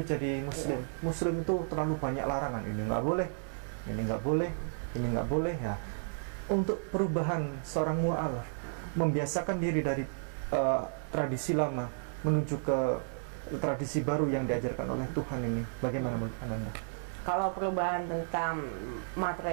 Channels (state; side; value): silent; left; digital silence